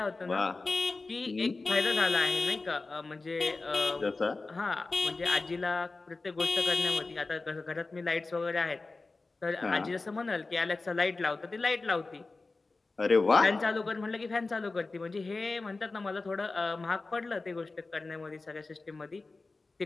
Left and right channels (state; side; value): quieter; right; 3.6 dB